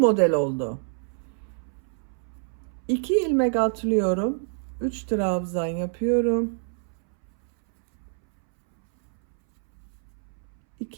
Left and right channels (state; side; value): silent; left; 61 dB below the other